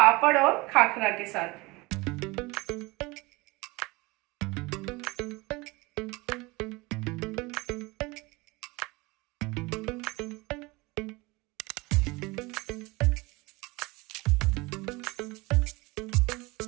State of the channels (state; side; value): quieter; left; 23.5 dB